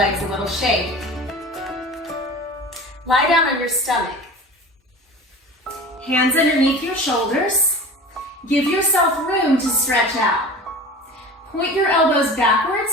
a little shake. Lie down on your stomach. Hands underneath your shoulders. Give yourself room to stretch out. Point your elbows backwards.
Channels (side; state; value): both; normal; correlation 0.36